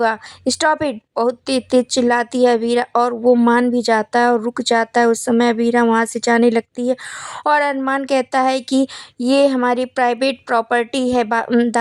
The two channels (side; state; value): both; identical; correlation 1.00